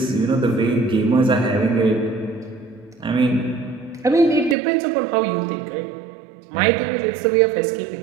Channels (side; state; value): left; drops out; at 4.5 s